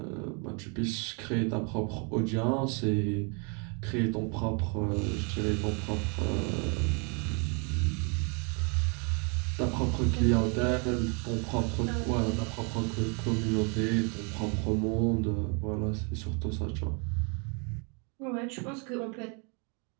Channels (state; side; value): quieter; left; 35.2 dB